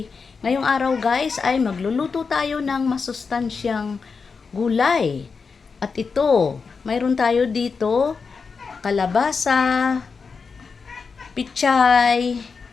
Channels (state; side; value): quieter; right; 5.1 dB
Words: Ngayong araw guys ay magluluto tayo ng masustansyang gulay. At ito, mayroon tayo dito kalabasa, pichay,